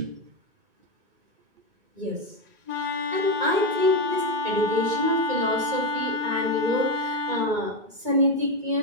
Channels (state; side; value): late; left; 2.2 ms